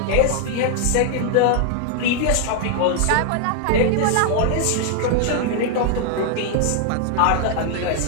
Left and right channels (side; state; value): both; different; correlation 0.00